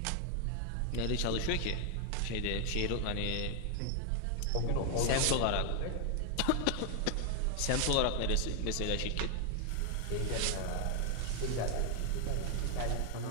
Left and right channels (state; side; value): different; both; correlation 0.00